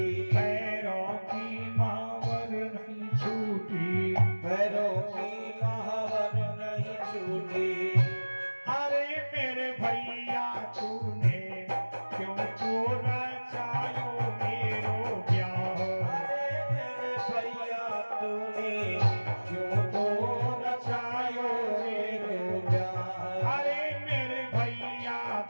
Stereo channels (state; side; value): inverted; both; correlation -1.00